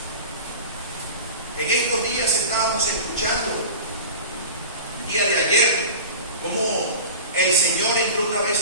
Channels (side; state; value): both; inverted; correlation -0.34